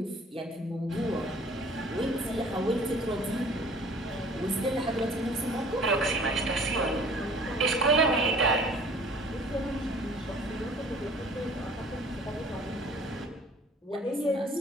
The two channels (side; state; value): both; normal; correlation 0.50